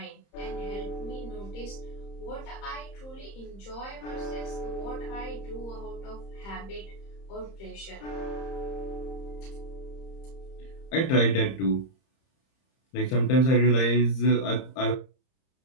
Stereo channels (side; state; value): right; late; 30 ms